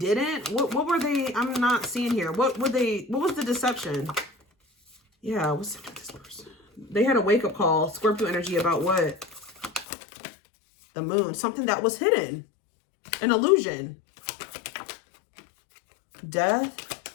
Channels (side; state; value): right; drops out; at 9.9 s